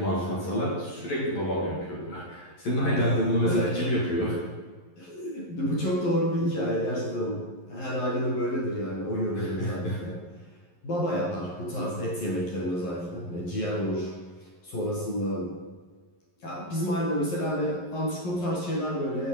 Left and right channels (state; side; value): late; right; 11 ms